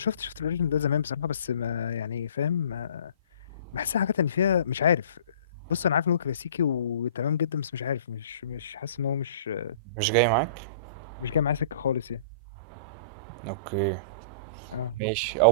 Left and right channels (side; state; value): both; inverted; correlation -0.46